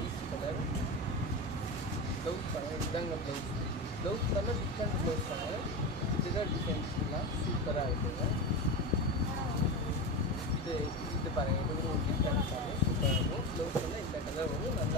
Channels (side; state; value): both; normal; correlation 0.21